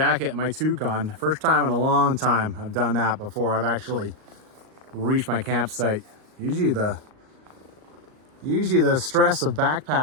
and my toque on. First time in a long time I've done that before I've actually reached my campsite. Usually the stress of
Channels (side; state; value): left; late; 38 ms